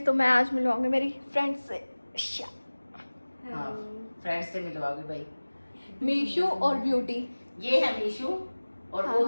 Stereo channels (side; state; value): both; inverted; correlation -1.00